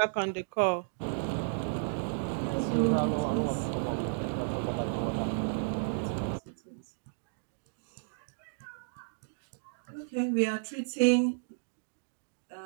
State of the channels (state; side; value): silent; left; digital silence